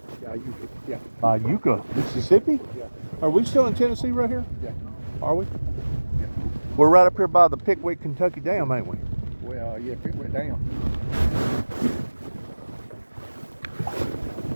Yeah, Iuka. Yeah. Iuka, Mississippi? Yeah. Are we still in Tennessee right here? Yeah. Are we? Yeah. We're right up here by the Pickwick, Kentucky Dam, ain't we? Well, yeah, if it went down.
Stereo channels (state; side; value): inverted; both; correlation -1.00